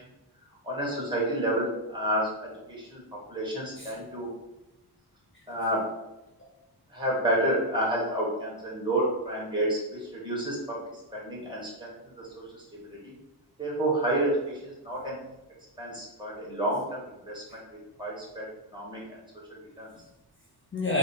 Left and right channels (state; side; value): normal; both; correlation -0.03